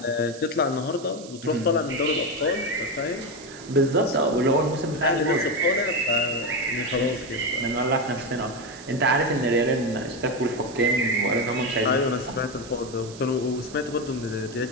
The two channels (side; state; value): right; noise; hiss, 18 dB below the sound